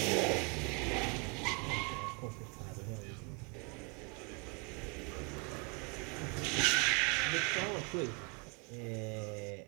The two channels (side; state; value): left; quieter; 30.8 dB